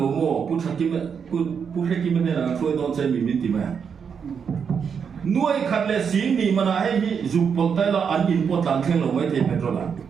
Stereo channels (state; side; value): quieter; left; 6.7 dB